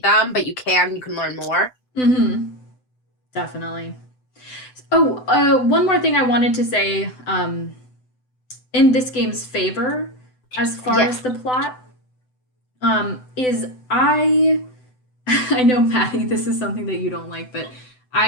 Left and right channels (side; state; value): right; late; 7.9 ms